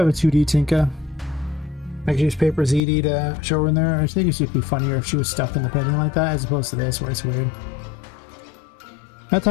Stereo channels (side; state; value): right; drops out; at 2.8 s